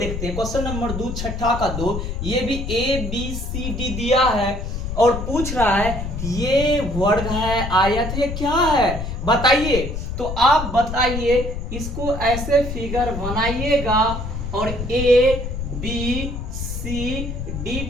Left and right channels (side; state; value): left; noise; rumble, 5 dB below the sound